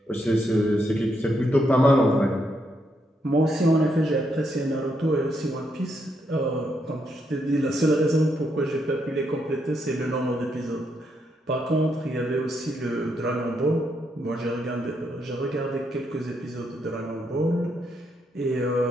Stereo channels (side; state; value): both; normal; correlation 0.78